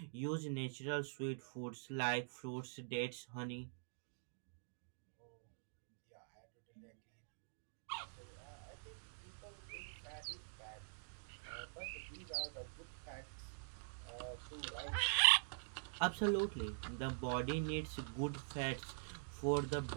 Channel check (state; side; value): silent; left; digital silence